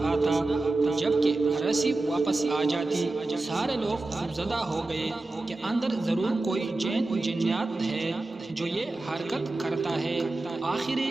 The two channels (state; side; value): quieter; left; 3.1 dB